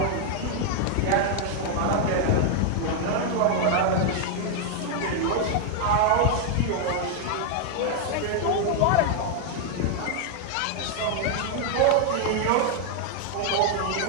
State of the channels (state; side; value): different; both; correlation 0.00